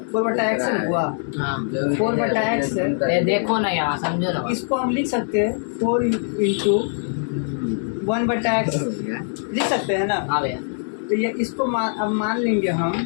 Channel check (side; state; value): right; silent; digital silence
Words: है हुआ। 4/x है। देखो ना यहाँ, समझो ना। इसको हम लिख सकते हैं 4 इंटू 1/x लिख सकते हैं ना। हाँ भैया। तो ये इसको अब मान लेंगे हम,